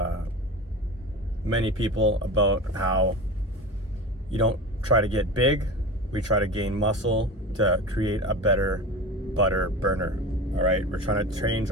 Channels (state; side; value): normal; both; correlation 0.30